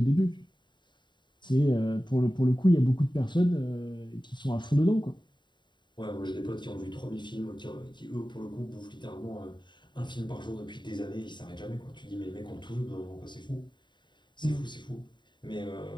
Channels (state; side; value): late; right; 0.22 ms